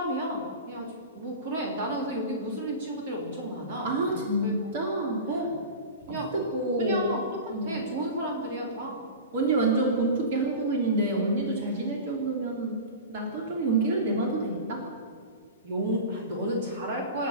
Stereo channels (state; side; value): inverted; both; correlation -0.30